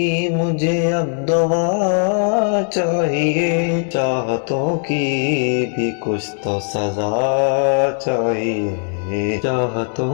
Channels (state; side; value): silent; right; 55 dB below the other